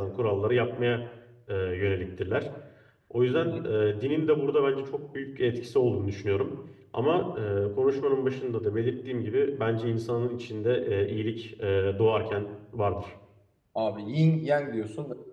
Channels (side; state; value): both; identical; correlation 1.00